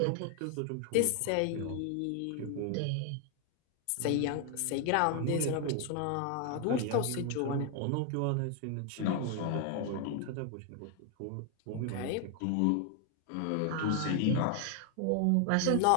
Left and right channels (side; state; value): both; different; correlation 0.00